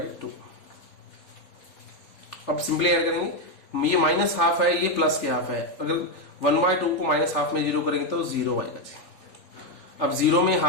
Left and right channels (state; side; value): late; right; 3.4 ms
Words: अब सिंपली ऐड करेंगे, ये -½ है, ये प्लस के हाफ है, अगर 1/2 को -½ में 0 करेंगे तो 0 आएगा जी। अब 0 में